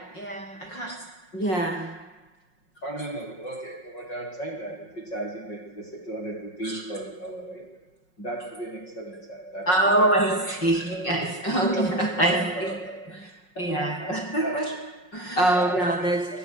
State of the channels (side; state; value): right; late; 5.5 ms